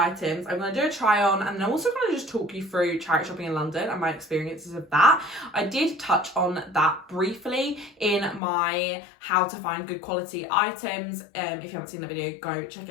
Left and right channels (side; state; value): right; drops out; at 8.4 s